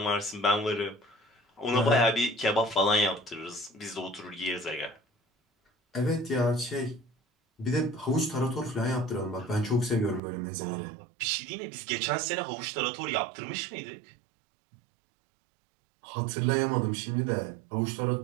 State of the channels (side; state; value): left; drops out; at 10.2 s